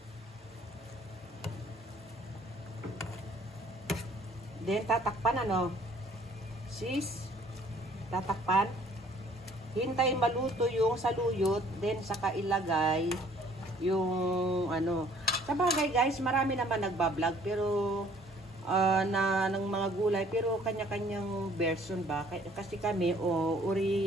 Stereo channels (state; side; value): normal; both; correlation 0.58